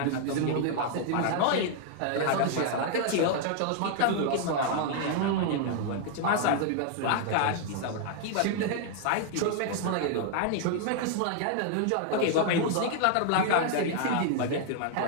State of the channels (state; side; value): different; both; correlation 0.00